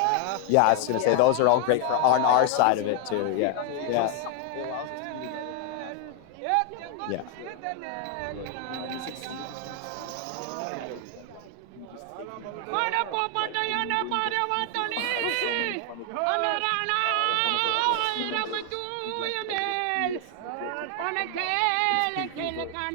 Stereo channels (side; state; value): both; different; correlation 0.00